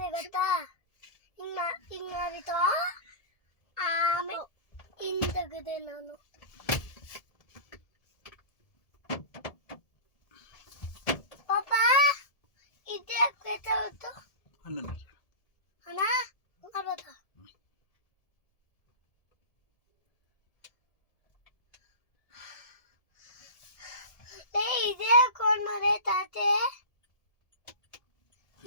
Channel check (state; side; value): late; right; 1.7 ms